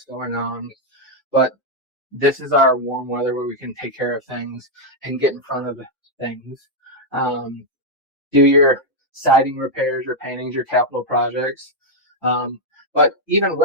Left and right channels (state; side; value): normal; both; correlation -0.01